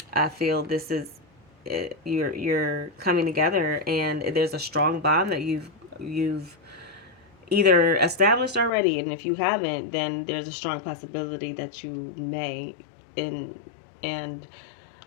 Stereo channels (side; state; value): right; drops out; at 8.7 s